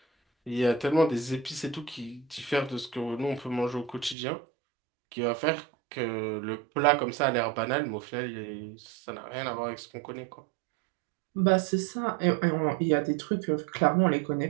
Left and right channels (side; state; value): left; drops out; at 4.2 s